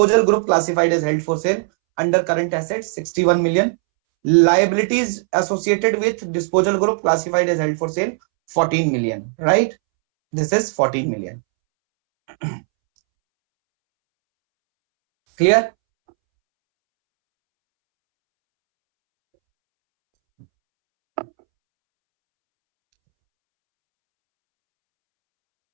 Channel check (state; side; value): silent; left; 67 dB below the other